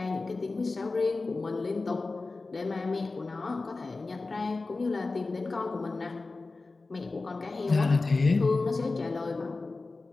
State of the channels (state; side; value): quieter; right; 3.6 dB